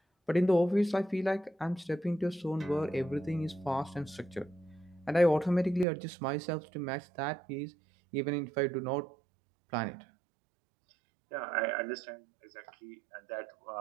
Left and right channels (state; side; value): drops out; left; at 5.9 s